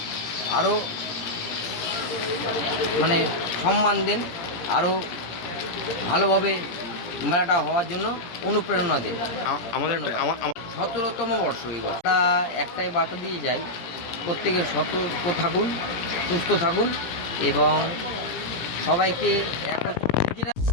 আরও সম্মান দেন, আরও ভালোভাবে মেলাটা হওয়ার জন্য অনুপ্রেরণা দেন। আমাদের 17তম বর্ষ এই বছর একটাই বার্তা দিয়ে যাই, প্রত্যেকে সতর্ক থাকুন, সুস্থ থাকুন এবং সবাইকে একত্রিত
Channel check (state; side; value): late; right; 17 ms